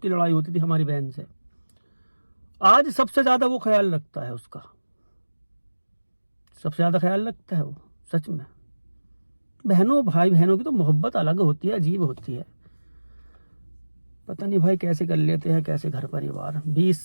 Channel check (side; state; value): both; inverted; correlation -1.00